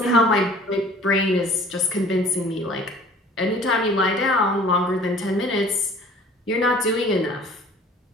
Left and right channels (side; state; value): both; normal; correlation 0.50